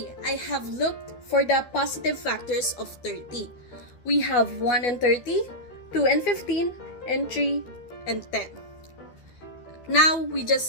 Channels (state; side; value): late; right; 12 ms